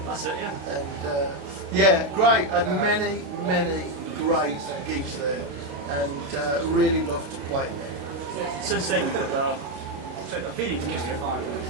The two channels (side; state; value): left; late; 30 ms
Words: That's it, yeah. And yeah, great. Had many great gigs there, and really loved to play in there. Yeah. Since then, you've got a varied career.